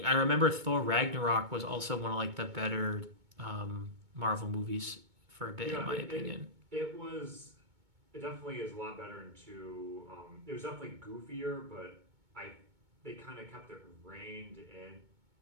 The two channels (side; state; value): left; late; 2.2 ms